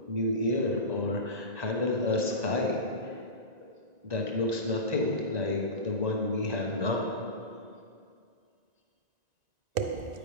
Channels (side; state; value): left; late; 1.9 ms